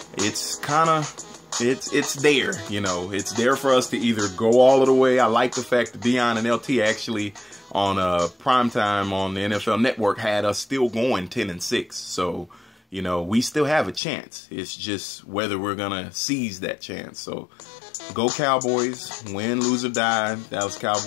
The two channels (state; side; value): drops out; right; at 14.0 s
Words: it's kind of... It's there, you know. It's there for us to either go all of the way. I like the fact that Dion and LT actually on primetime on the NFL Network had us still going 10-6. So, you know, we still have a chance. It's just whether we're going to seize that chance. So, go Cowboys. Win, lose, or die. Dallas